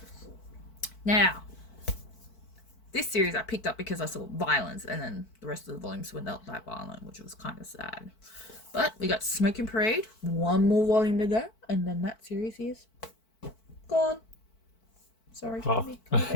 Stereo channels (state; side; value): late; right; 4.5 ms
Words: Now, this series I picked up because I saw violence, and then the rest of the volumes were not that violent, which was kind of sad. But we got Smoking Parade, one more volume to go, and then that series is gone. Sorry, come here,